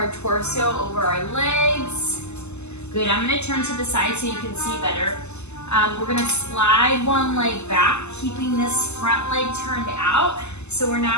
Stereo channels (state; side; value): late; right; 0.82 ms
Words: torso over our legs. Good, I'm gonna turn to the side so you can see better. We're gonna slide one leg back, keeping this front leg turned out. So we're